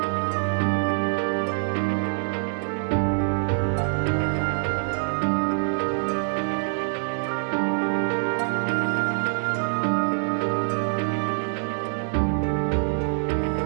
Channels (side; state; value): left; silent; digital silence